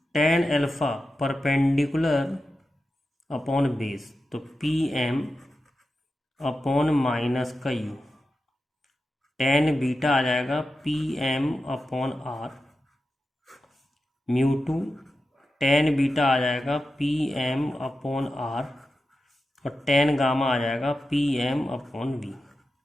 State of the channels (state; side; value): normal; both; correlation 0.91